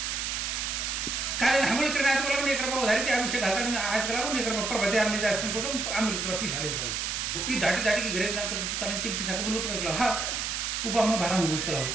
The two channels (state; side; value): noise; right; hiss, 2 dB below the sound